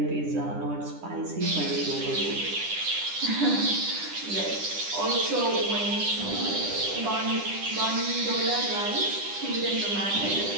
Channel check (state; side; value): late; left; 10 ms